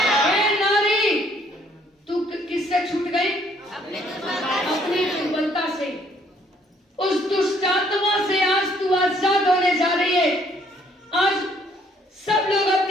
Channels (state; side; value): normal; both; correlation 0.64